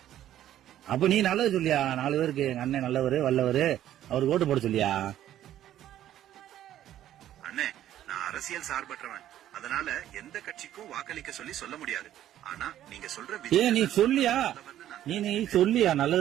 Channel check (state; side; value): quieter; left; 12.1 dB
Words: அப்ப நீ நல்லது சொல்லியா? 4 பேருக்கு எங்க அண்ணன் நல்லவரு வல்லவரு, அவருக்கு ஓட்டு போட சொல்லியா? அண்ணே, நான் அரசியல் சார்பற்றவன், அதனால எந்த கட்சிக்கும் வாக்களிக்க சொல்லி சொல்ல முடியாது. ஆனா நீங்க சொல்ற நீ சொல்லியா? நீ சொல்லியா?